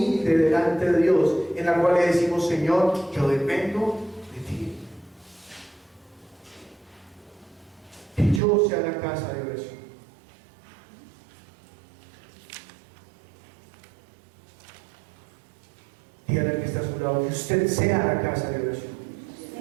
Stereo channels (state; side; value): drops out; left; at 8.4 s